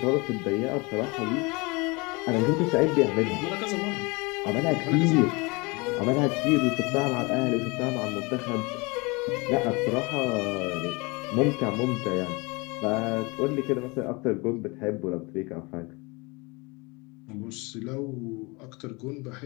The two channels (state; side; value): quieter; right; 26.9 dB